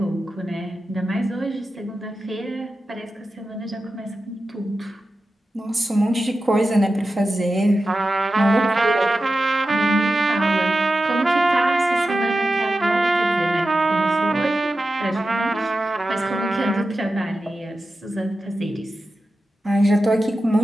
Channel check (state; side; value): normal; both; correlation 0.92